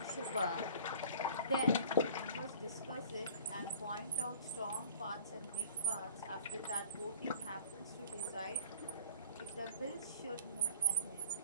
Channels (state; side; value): inverted; both; correlation -0.49